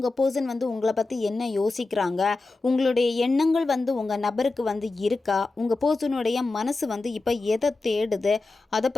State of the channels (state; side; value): quieter; right; 3.4 dB